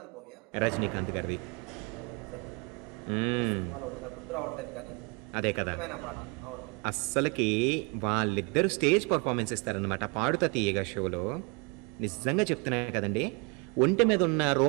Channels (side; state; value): left; quieter; 30.8 dB